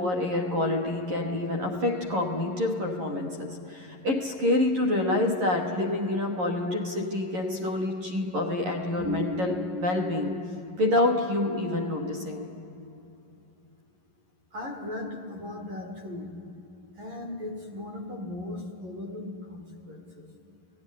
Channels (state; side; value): late; left; 11 ms